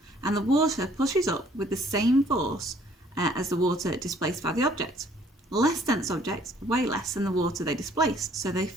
and the water pushes up with the same force as the water displaced by the object. Less dense objects weigh less than the water they displaced, so they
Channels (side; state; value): both; normal; correlation 0.60